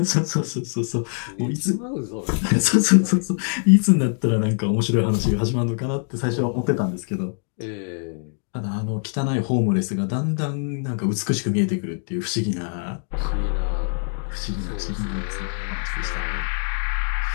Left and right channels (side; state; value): right; silent; 58 dB below the other